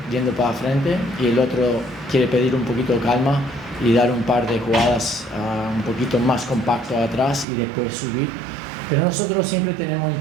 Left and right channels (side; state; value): left; drops out; at 7.5 s